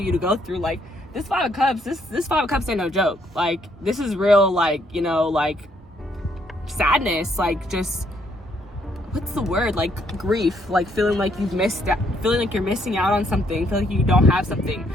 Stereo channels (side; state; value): both; normal; correlation 0.70